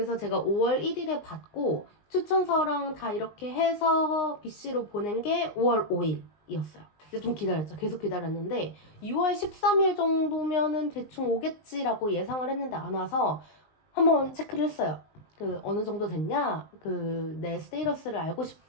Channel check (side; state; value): right; late; 19 ms